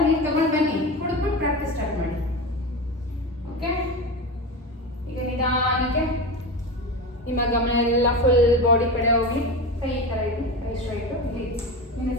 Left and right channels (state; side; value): normal; both; correlation 0.24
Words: ನೀರು ತಗೊಂಡು ಬನ್ನಿ, ಕುಡಿದ್ಬಿಟ್ಟು ಪ್ರಾಕ್ಟೀಸ್ ಸ್ಟಾರ್ಟ್ ಮಾಡಿ. ಓಕೆ, ಈಗ ನಿಧಾನಕ್ಕೆ ನಿಮ್ಮ ಗಮನ ಎಲ್ಲ ಫುಲ್ ಬಾಡಿ ಕಡೆ ಹೋಗಿ. ಕೈ ಈ ಥರ ಇಡಿ, ಕೈ ಸ್ಟ್ರೈಟು. ಇಲ್ಲಿ ನಿಮ್ಮ